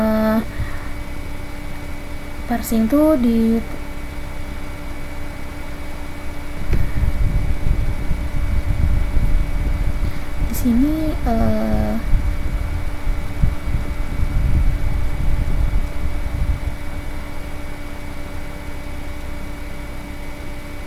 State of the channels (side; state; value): both; identical; correlation 1.00